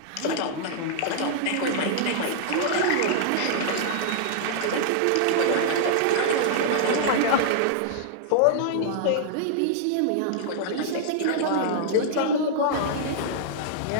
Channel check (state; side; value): different; both; correlation -0.01